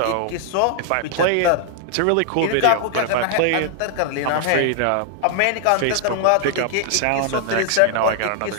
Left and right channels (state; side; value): different; both; correlation 0.00